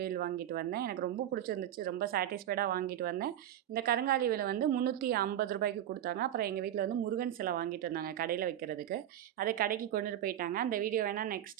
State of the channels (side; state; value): left; quieter; 11.3 dB